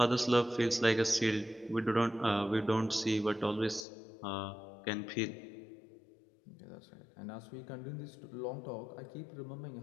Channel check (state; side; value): drops out; right; at 3.9 s